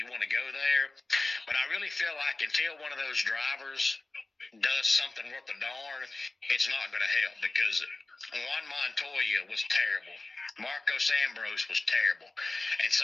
want to go there. But I really feel like until one of those drivers does something worth a darn, it's not going to help, because Juan Montoya was terrible. Marco Ambrose was terrible. And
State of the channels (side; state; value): right; quieter; 3.1 dB